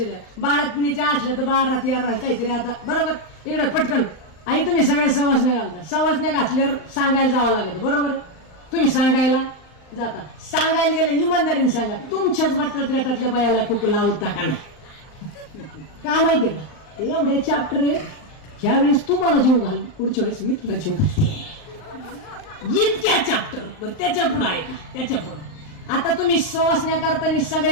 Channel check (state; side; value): late; right; 39 ms